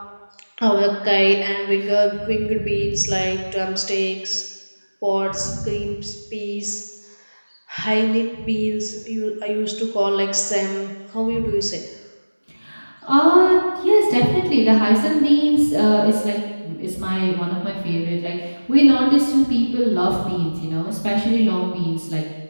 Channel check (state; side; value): inverted; both; correlation -1.00